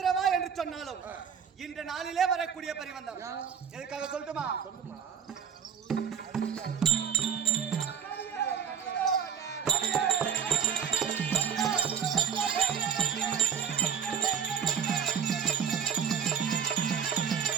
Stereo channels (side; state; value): left; quieter; 7.4 dB